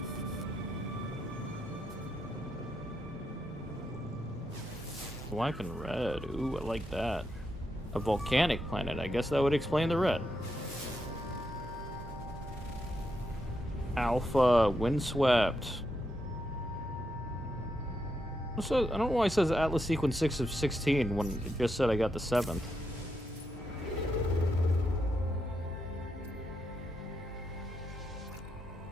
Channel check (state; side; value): normal; both; correlation 0.83